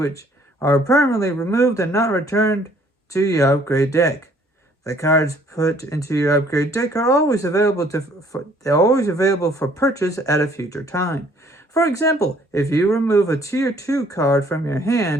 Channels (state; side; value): normal; both; correlation 0.60